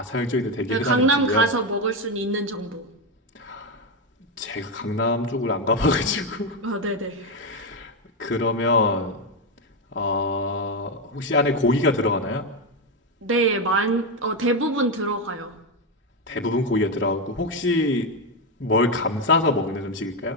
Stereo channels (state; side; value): normal; both; correlation 0.09